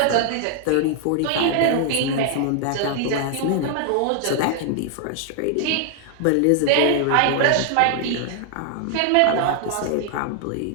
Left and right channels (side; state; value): both; different; correlation 0.00